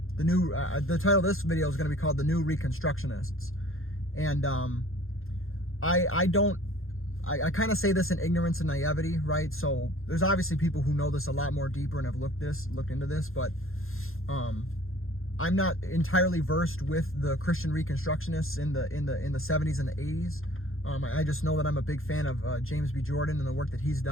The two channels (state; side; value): late; right; 0.60 ms